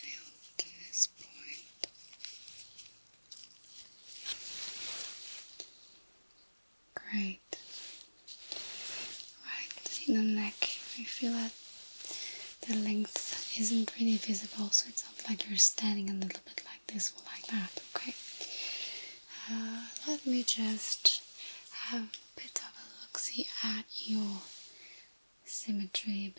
to this point. Great. Right, in the neck, I feel that the length isn't really visible, so it's not like you're standing a little bit like this or like that, okay? Let me just have a bit of a look-see at your symmetry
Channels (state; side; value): inverted; both; correlation -1.00